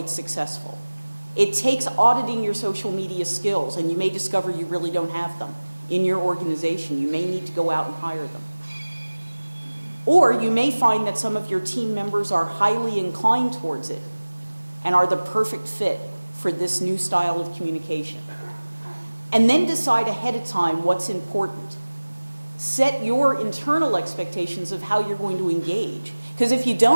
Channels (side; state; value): both; inverted; correlation -1.00